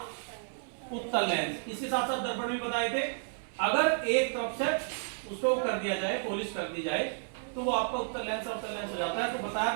उत्तल लेंस। इसके साथ साथ दर्पण भी बताए थे। अगर एक तरफ से उसको कर दिया जाए, पॉलिश कर दी जाए, तो वो आपका उत्तल लेंस अवतल लेंस हो जाता है। तो बताया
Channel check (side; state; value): left; silent; digital silence